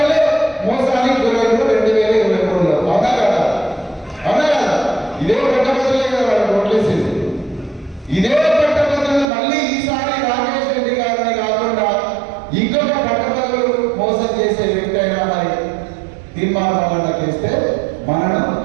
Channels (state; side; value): drops out; left; at 9.2 s